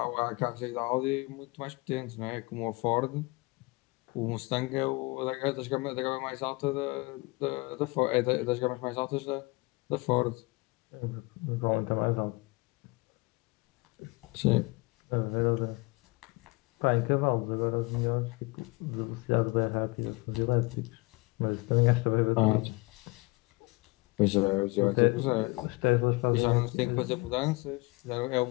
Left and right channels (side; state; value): right; quieter; 25.5 dB